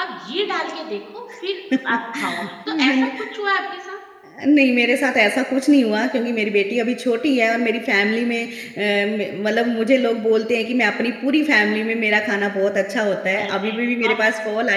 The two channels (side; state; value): both; identical; correlation 1.00